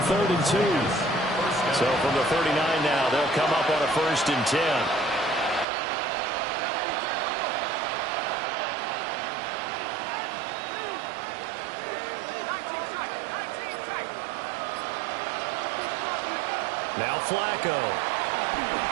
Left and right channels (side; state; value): left; drops out; at 5.7 s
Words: 3rd and 2. So from the 39 now, they'll come up on a 1st and 10. Now Flacco.